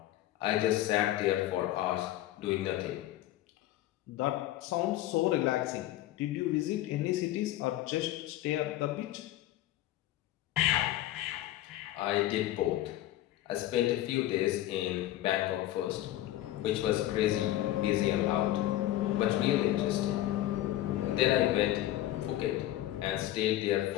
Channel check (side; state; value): right; quieter; 14.4 dB